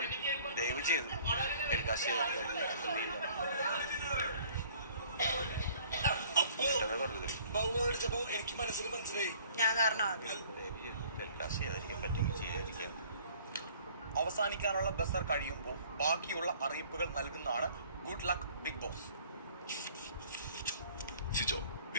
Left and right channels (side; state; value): both; inverted; correlation -0.54